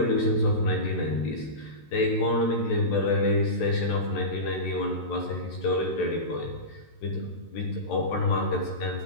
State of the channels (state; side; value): late; right; 13 ms